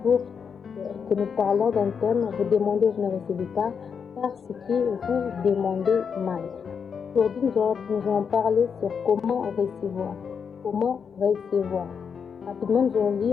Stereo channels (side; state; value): right; quieter; 6.5 dB